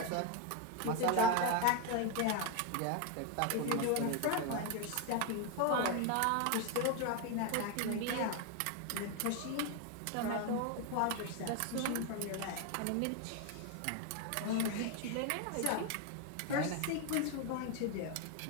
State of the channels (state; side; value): different; both; correlation 0.02